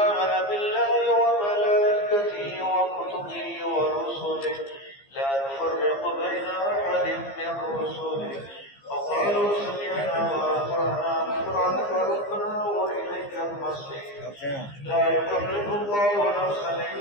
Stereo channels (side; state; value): right; late; 15 ms